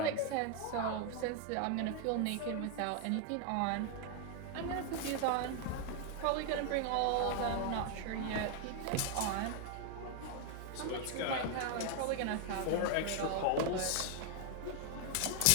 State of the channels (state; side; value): different; both; correlation 0.00